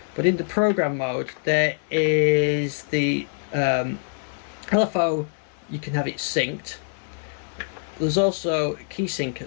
but in the program mode there is the LFO. You can have it synced. There's also key sync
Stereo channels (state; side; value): silent; right; 61 dB below the other